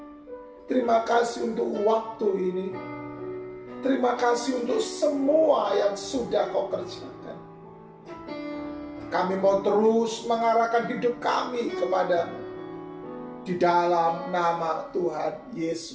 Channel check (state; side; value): identical; both; correlation 1.00